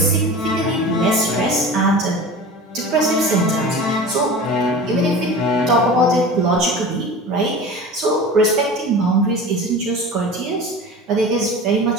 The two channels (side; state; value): both; normal; correlation 0.35